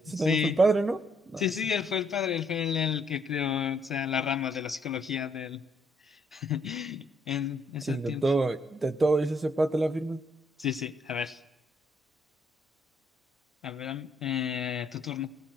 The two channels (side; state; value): both; normal; correlation 0.71